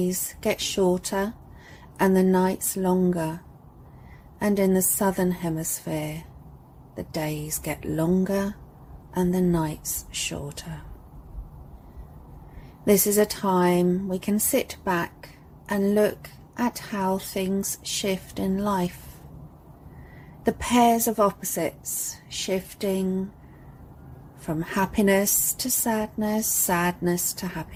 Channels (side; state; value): both; identical; correlation 1.00